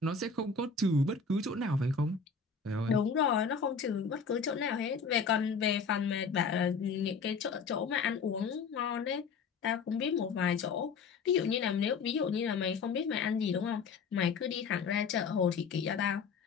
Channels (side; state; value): right; quieter; 5.2 dB